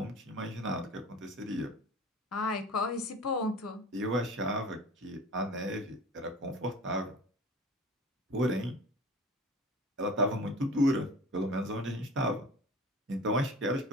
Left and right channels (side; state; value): both; normal; correlation 0.39